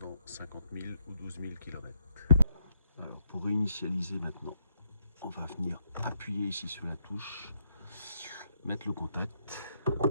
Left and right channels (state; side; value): inverted; both; correlation -0.75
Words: 50 000 ou 12 000 km. Alors pour réinitialiser maintenant, on va venir appuyer ici sur la touche, mettre le contact